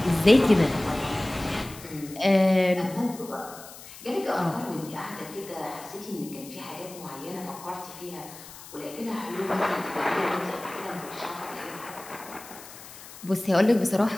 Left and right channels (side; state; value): left; noise; hiss, 16 dB below the sound